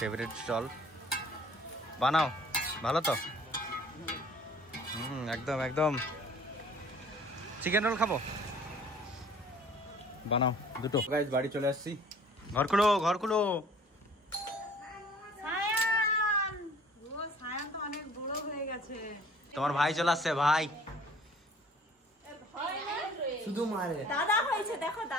স্টল। বানাও ভালো তো? একদম একদম চিকেন রোল খাবো, বানাও দুটো। গাইস বাড়ি চলে আসছি। ঘর খুলো ঘর খুলো। তোমার ভাই চলে আসছে, ভাই শুধু মারে। দাদা হয়েছে, দেখো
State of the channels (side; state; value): both; normal; correlation 0.52